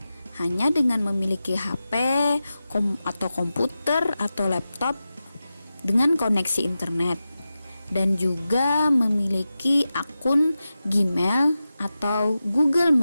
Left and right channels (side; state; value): both; inverted; correlation -0.93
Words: hanya dengan memiliki HP atau komputer atau laptop dengan koneksi internet dan juga memiliki akun Gmail atau Google